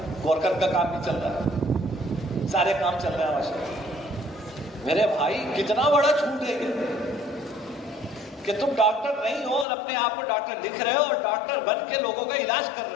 گورکر کا کام بھی چل رہا ہے، سارے کام چل رہے ہیں ماشاءاللہ. میرے بھائی کتنا بڑا جھوٹ ہے یہ کہ تم ڈاکٹر نہیں ہو اور اپنے آپ کو ڈاکٹر لکھ رہے ہو اور ڈاکٹر بن کے لوگوں کا علاج کر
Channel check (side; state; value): right; drops out; at 9.7 s